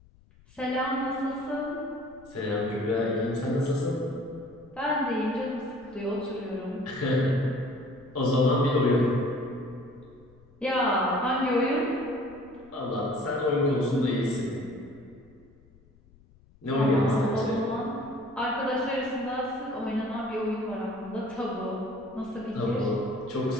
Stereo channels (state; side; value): noise; left; rumble, 27 dB below the sound